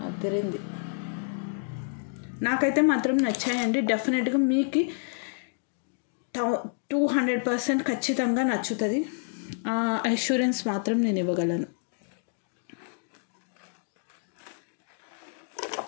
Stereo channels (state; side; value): silent; right; digital silence